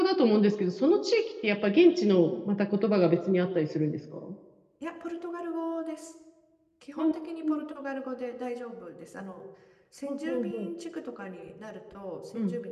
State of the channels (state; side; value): identical; both; correlation 1.00